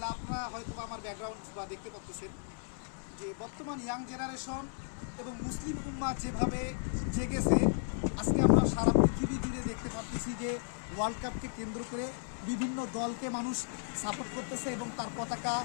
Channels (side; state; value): right; silent; 55 dB below the other